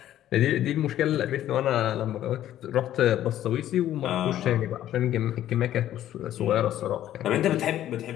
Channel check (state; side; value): quieter; right; 12.3 dB